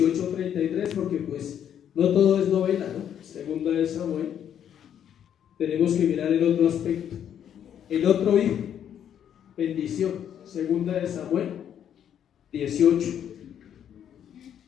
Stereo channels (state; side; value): quieter; right; 9.4 dB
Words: porque pues no todo es novela, ¿no? Segunda de Samuel. Tenemos que mirar el otro aspecto. El otro hijo. Bendición. Segunda de Samuel